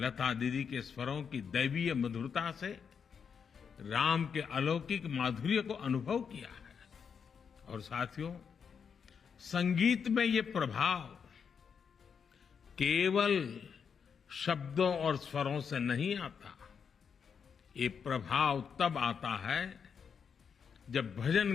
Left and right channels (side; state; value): right; quieter; 6.7 dB